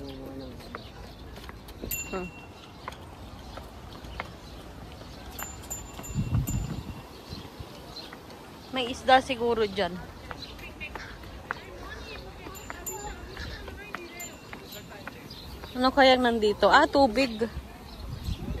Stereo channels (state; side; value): identical; both; correlation 1.00